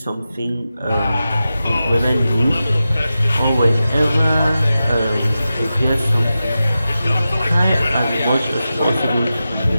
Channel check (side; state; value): both; inverted; correlation -0.92